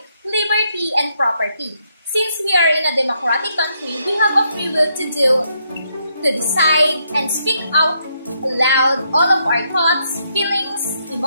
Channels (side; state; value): both; inverted; correlation -0.76